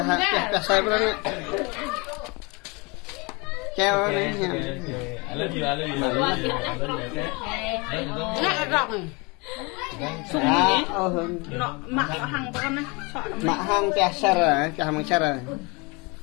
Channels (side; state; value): right; quieter; 28.2 dB